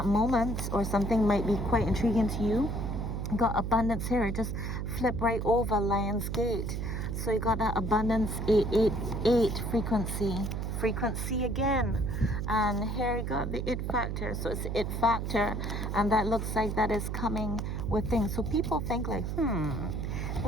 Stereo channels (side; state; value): right; noise; hum, 3 dB below the sound